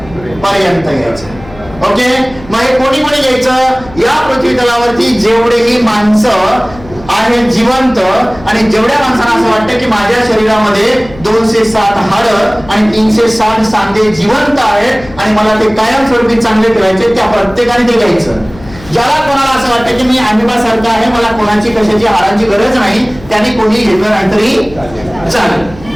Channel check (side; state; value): left; noise; hum, 19 dB below the sound